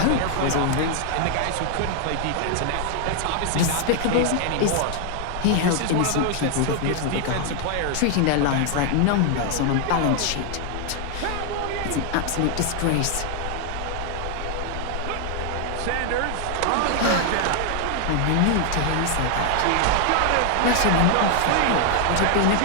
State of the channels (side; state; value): both; different; correlation 0.00